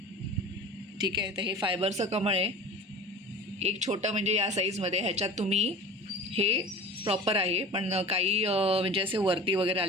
ठीक आहे. तर हे फायबरचं कमळ आहे. एक छोटं म्हणजे या साईजमध्ये, ह्याच्यात तुम्ही हे प्रॉपर आहे, पण काही म्हणजे असे वरती वगैरे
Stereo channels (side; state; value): both; normal; correlation 0.37